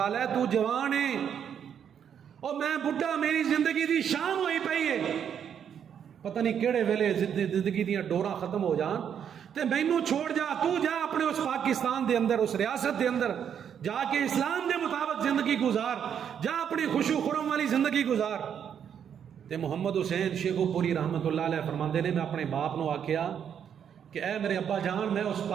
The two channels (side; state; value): left; quieter; 8.4 dB